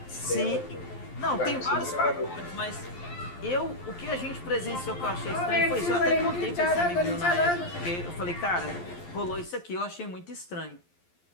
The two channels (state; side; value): late; right; 11 ms